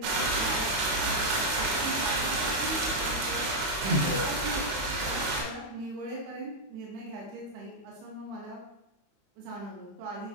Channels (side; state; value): left; late; 25 ms